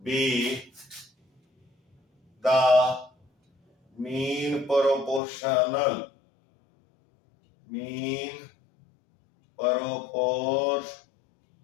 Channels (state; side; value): drops out; right; at 5.2 s